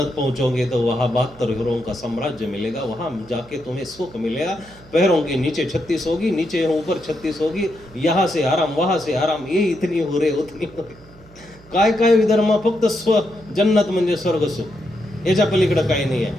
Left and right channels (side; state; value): right; noise; hum, 23 dB below the sound